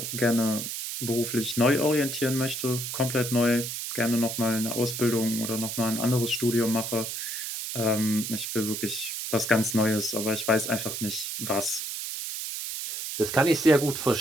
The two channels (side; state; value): right; noise; hiss, 5 dB below the sound